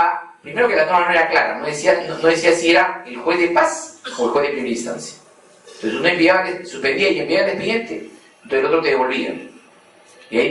primero que la norma no era clara, no decía si era el juez de paz o el juez de primera instancia. Entonces uno suspendía y enviaba el expediente, entonces el otro te devolvía. Y ahí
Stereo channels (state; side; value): identical; both; correlation 1.00